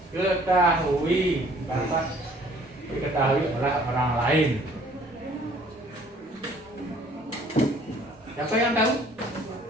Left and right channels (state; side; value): normal; both; correlation 0.56